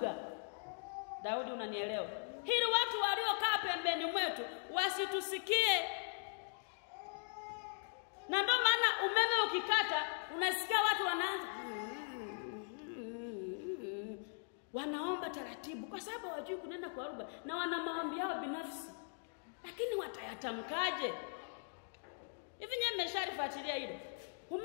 Daudi, unanielewa? Hili watu waliokaa pembeni mwetu wasitusikie. Na ndio maana umeme ukikata unasikia watu wanaanza wanaomba taratibu kwa sababu hawajui kunena kwa lugha na wana maombi yao binafsi. Lakini watayatamkaje? Hivi nyewe mmesharifuatilia hilo?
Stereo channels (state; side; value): silent; right; digital silence